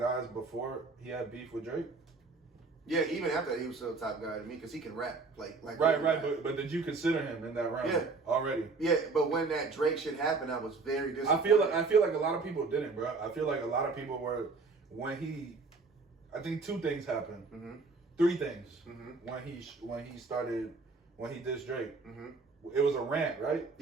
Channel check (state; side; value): quieter; left; 4.1 dB